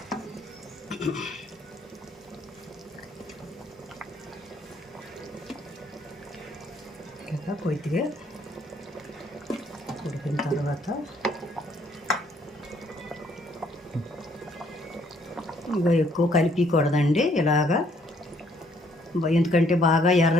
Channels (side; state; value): both; normal; correlation 0.66